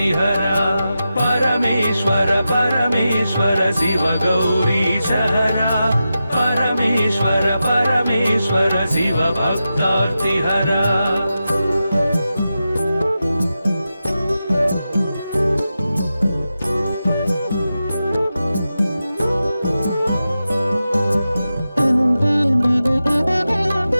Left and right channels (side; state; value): both; inverted; correlation -0.91